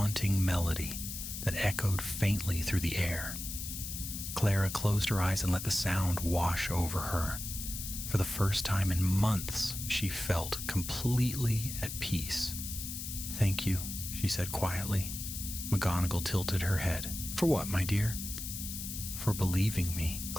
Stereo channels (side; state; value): left; noise; hiss, 7 dB below the sound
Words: melody that echoed faintly through the air. Clara closed her eyes and let the sound wash over her. For the first time in months, she felt completely at peace. Thank you, she said quietly. McGonagall tilted her head. For what, my dear? For believing me,